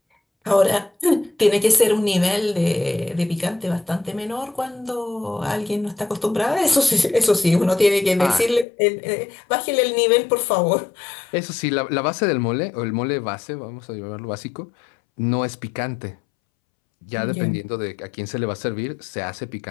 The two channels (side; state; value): right; drops out; at 8.7 s